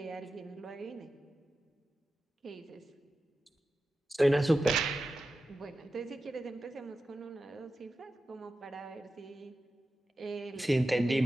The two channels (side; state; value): both; normal; correlation 0.92